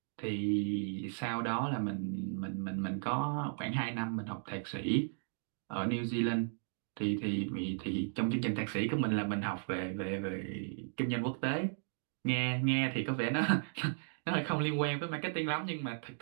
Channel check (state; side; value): silent; left; digital silence